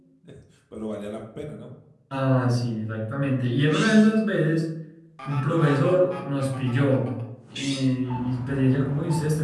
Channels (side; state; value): both; identical; correlation 1.00